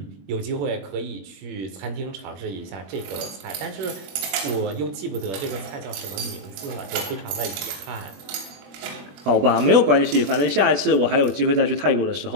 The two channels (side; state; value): left; late; 21 ms